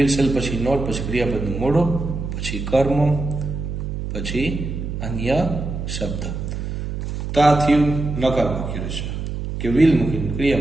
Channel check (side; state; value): right; noise; hum, 5 dB below the sound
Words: શેલ પછી નોટ પછી ક્રિયાપદનું મૂળરૂપ પછી કર્મ પછી અન્ય શબ્દ. તો આ થયું નકાર વાક્ય રચના કે વિલ મૂકીને